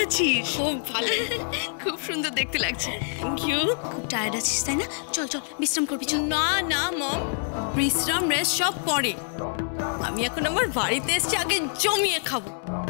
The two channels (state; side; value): silent; right; digital silence